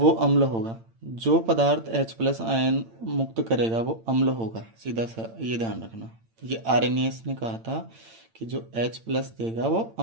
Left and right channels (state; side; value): late; left; 8.9 ms